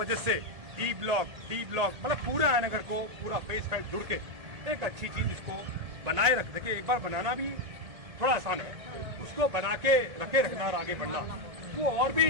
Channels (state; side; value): late; left; 1.8 ms